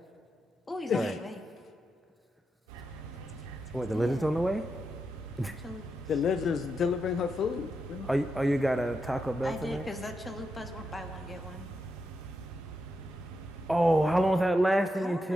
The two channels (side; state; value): both; normal; correlation 0.85